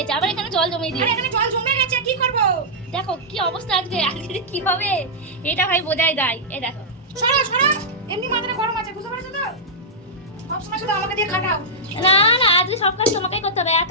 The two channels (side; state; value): both; normal; correlation -0.09